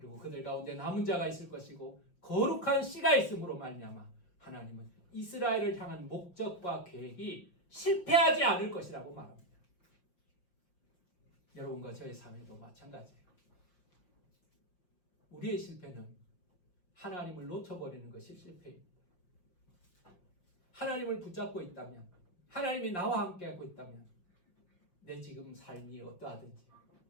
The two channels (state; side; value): late; right; 5.7 ms